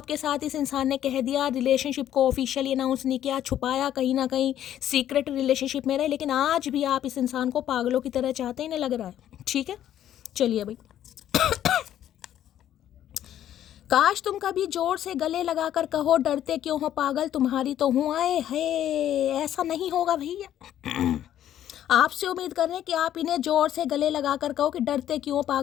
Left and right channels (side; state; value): right; quieter; 11.3 dB